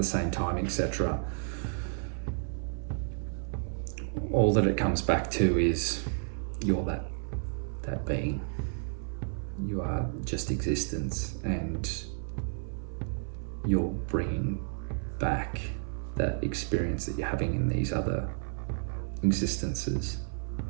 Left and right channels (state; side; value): silent; left; 56 dB below the other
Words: same time, etc., all that it comes back to is you're that being. You are just existence, and you're bringing back that experience that you're having in these other existences.